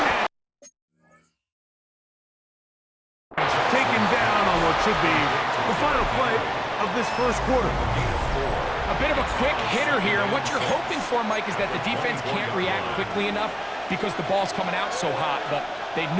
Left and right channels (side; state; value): both; identical; correlation 1.00